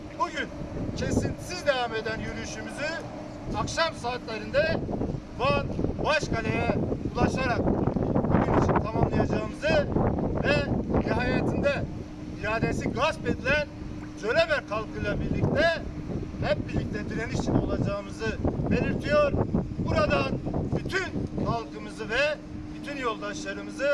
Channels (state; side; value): identical; both; correlation 1.00